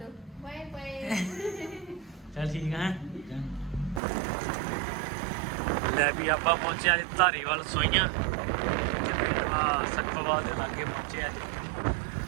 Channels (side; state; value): left; drops out; at 4.0 s